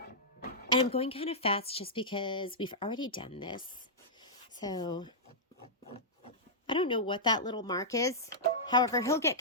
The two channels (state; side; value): normal; both; correlation -0.12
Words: And I'm going kind of fast just because we've already done this. So I don't know what that little mark is. However, he'll get